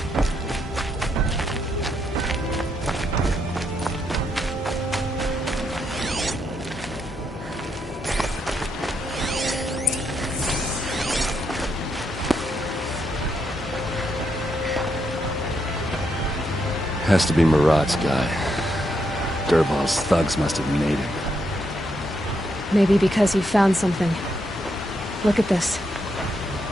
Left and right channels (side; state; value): both; normal; correlation 0.79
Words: Has to be Marat's guy. Dervahl's thugs must have made him. Maybe because he found something. Look at this.